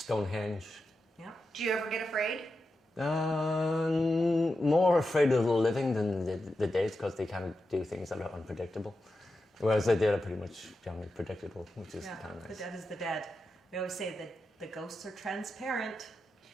Yeah. Do you ever get afraid? More afraid of the living than the dead, because they kind of do things that are unpredictable. Whereas the dead are pretty much generally predictable, which is kind of nice. The dead is the dead. We always say that the ghosts are transparent.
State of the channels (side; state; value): both; normal; correlation 0.89